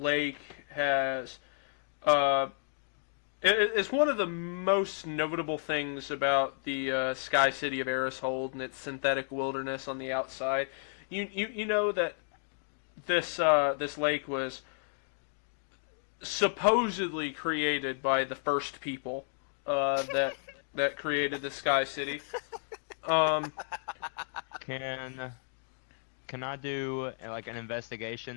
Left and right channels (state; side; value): silent; right; digital silence